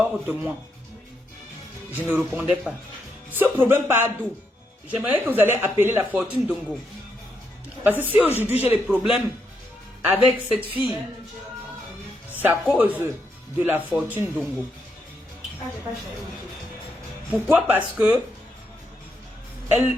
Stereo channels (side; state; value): both; normal; correlation 0.80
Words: de moi. Je ne répondais pas. Ce problème part d'où? J'aimerais que vous allez appeler la fortune Dongo. Parce que si aujourd'hui j'ai des problèmes avec cette fille, c'est à cause de la fortune Dongo. Pourquoi? Parce que elle